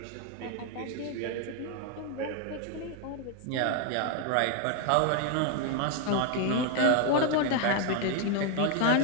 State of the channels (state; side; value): different; both; correlation 0.01